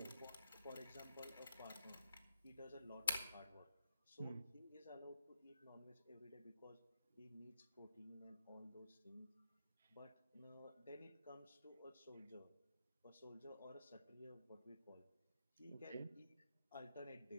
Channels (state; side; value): inverted; both; correlation -0.83